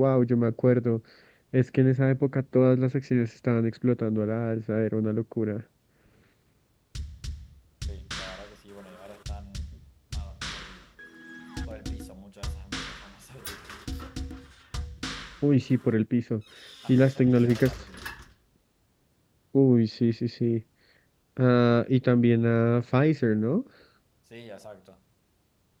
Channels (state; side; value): identical; both; correlation 1.00